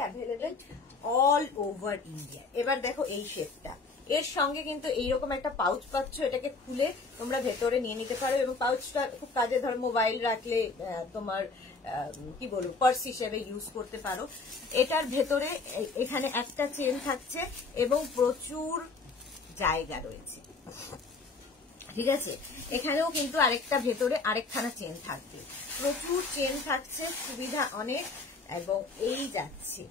available all over India. এবার দেখো এই শেপটা, এর সঙ্গে কিন্তু এইরকম একটা পাউচ পাচ্ছ, এটাকে খুলে তোমরা ভেতরে নিয়ে নিতে পারো এবং পাউচটা খুব কাজে, ধর মোবাইল রাখলে তোমার কি বলবো পার্স হিসেবে ইউজ করতে পারো। এটার ভেতরে এখানে একটা চেন থাকছে এবং প্রচুর জায়গা রয়েছে, ঠিক আছে? এখানেও কিন্তু আরেকটা ভেতরে আরেকখানা চেন থাকবে, প্রচুর চেন থাকছে, সুবিধা অনেক। এবং এই যাচ্ছে,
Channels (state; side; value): quieter; right; 4.1 dB